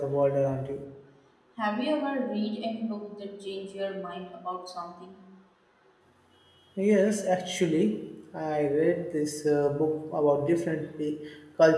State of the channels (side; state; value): both; identical; correlation 1.00